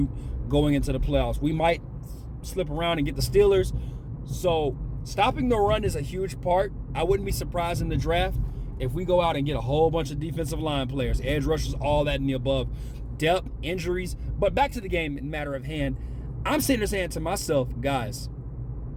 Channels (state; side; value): identical; both; correlation 1.00